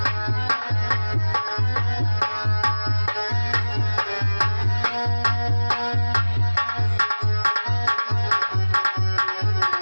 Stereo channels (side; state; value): both; inverted; correlation -1.00